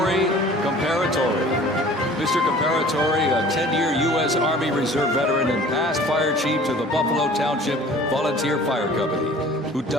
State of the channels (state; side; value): normal; both; correlation 0.48